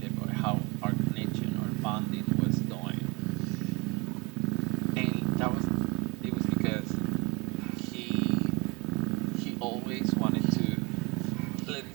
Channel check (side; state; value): left; quieter; 26.1 dB